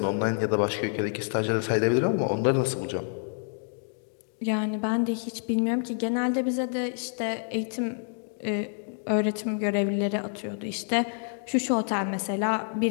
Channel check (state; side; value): silent; right; 59 dB below the other